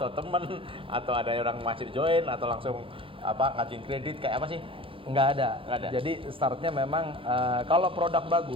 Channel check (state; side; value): late; left; 0.26 ms